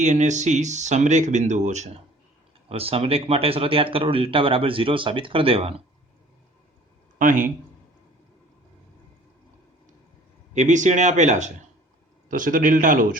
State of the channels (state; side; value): normal; both; correlation 0.51